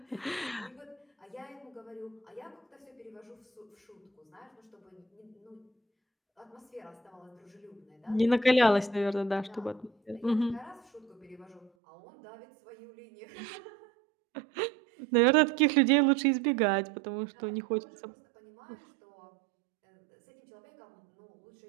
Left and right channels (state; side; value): drops out; left; at 11.7 s